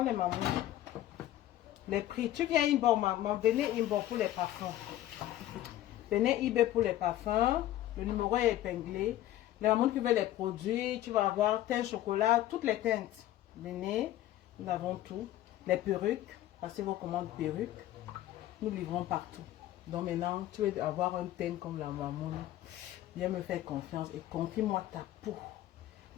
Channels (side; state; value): right; quieter; 13.9 dB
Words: les mamans. Les prix. Tu viens Inbo, maman. Venez Inbo pour les parfums. Venez eBay pour les parfums. Le numéro est épinglé. Les mamans qui veulent les produits, tu vas avoir teint chocolat, toutes les teintes. Venez, nous avons tout. Les perruques, passez vos commandes perruques. Nous livrons partout. Donc maintenant, tu veux avoir un teint comme la maman. Viens me faire confiance et confie-moi ta peau.